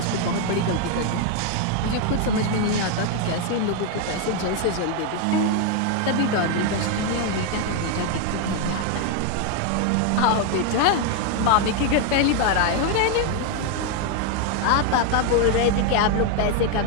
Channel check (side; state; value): both; different; correlation 0.01